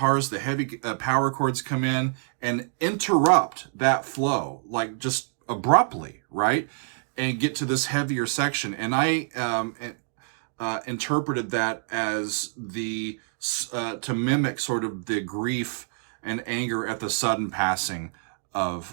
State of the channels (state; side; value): silent; left; digital silence